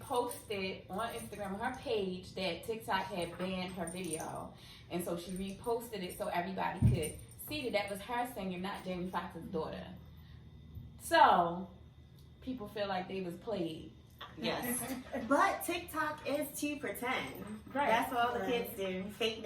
on Instagram, on her page, that TikTok had banned her video. And so she reposted it so everybody could see that was her singing, not Jamie Foxx's daughter. So, people feel like they was played. Yes. But TikTok is to pretend. Right. That's what all the kids do. Fake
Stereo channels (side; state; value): both; identical; correlation 1.00